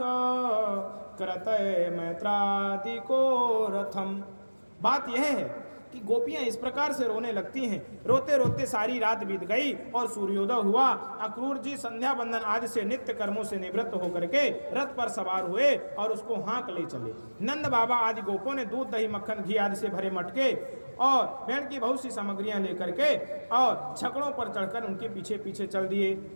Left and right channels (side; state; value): both; inverted; correlation -1.00